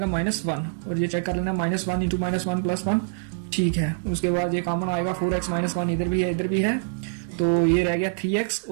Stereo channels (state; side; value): silent; left; digital silence